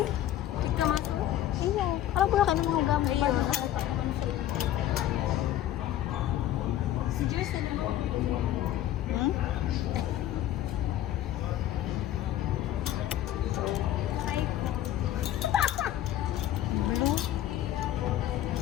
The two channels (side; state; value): right; quieter; 12.6 dB